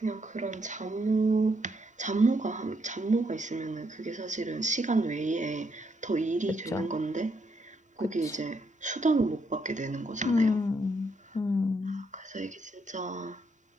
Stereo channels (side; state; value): both; normal; correlation 0.76